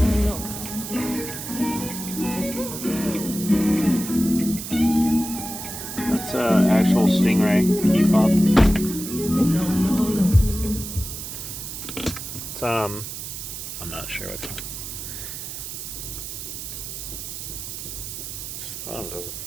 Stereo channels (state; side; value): noise; right; hiss, 8 dB below the sound